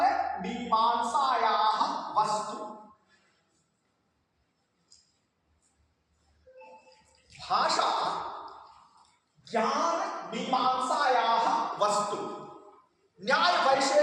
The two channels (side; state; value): both; identical; correlation 1.00